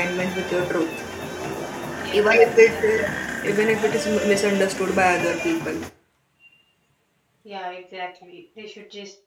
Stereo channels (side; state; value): both; identical; correlation 1.00